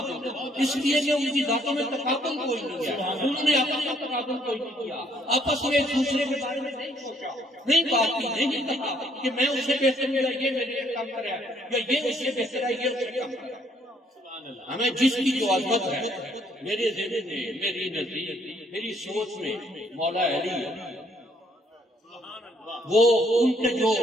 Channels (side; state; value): both; normal; correlation 0.67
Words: اس لیے کہ ان کی ذاتوں میں تقابل کوئی نہیں ہے، انہوں نے اپنا تقابل کوئی نہیں کیا، آپس میں ایک دوسرے کے بارے میں نہیں سوچا، نہیں بات کی، نہیں کہا کہ میں اسے بہتر ہوں یا یہ میرے لیے کم کرے یا یہ اس سے بہتر ہے، یہ اسے کم کرے۔ ہمیں جس کی جو عظمت ہے میرے ذہن میں، میری نزدیک، میری سوچ میں مولا علی، وہ ان کے جو